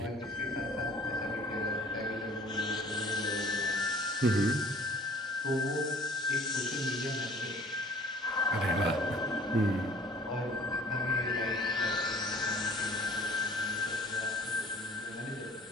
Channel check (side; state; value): both; normal; correlation 0.51